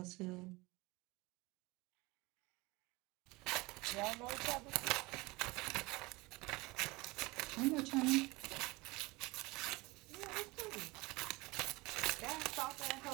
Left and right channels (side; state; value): left; quieter; 23.1 dB